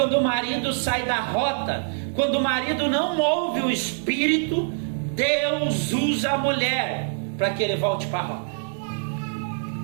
o marido sai da rota, quando o marido não ouve o espírito, Deus usa a mulher para que ele volte para a rota.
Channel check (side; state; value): left; silent; digital silence